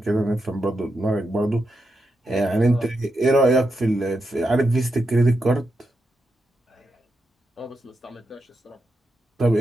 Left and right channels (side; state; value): both; normal; correlation 0.85